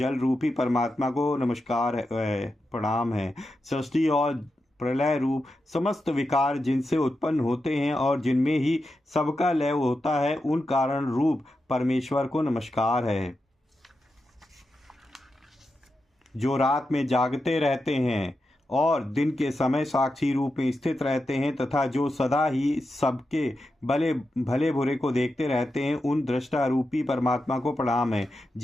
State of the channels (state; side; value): normal; both; correlation 0.89